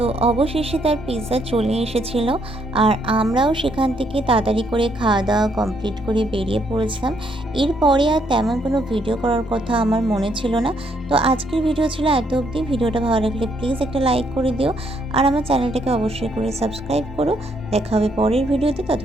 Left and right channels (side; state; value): both; normal; correlation 0.72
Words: অবশেষে তার পিৎজা চলে এসেছিল, আর আমরাও সেখান থেকে তাড়াতাড়ি করে খাওয়া দাওয়া কমপ্লিট করে বেরিয়ে পড়েছিলাম। এরপরে আর তেমন কোনো ভিডিও করার কথা আমার মনে ছিল না। তো আজকের ভিডিও ছিল এত অবধি। ভিডিওটা ভালো লাগলে প্লিজ একটা লাইক করে দিও, আর আমার চ্যানেলটাকে অবশ্যই করে সাবস্ক্রাইব করো। দেখা হবে পরের ভিডিওতে।